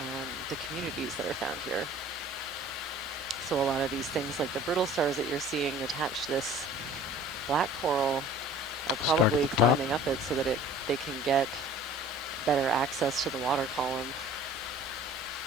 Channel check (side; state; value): both; normal; correlation 0.47